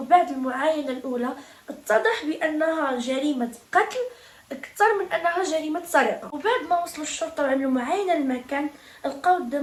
المعاينه الاولى اتضح بانها جريمه قتل اكثر من انها جريمه سرقه. وبعد ما وصلوا الشرطه وعملوا معاينه للمكان، لقاو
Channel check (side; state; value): both; identical; correlation 1.00